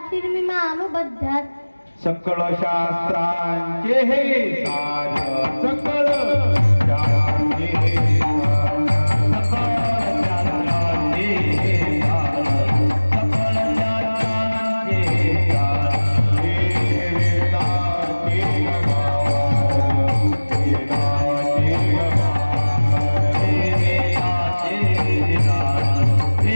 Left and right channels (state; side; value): inverted; both; correlation -1.00